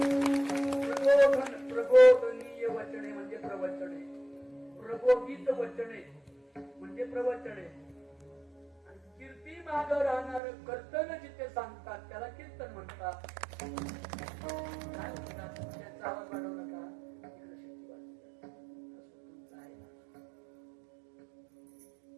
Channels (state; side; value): drops out; left; at 10.4 s